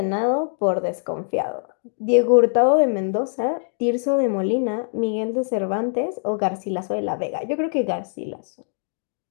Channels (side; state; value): right; silent; digital silence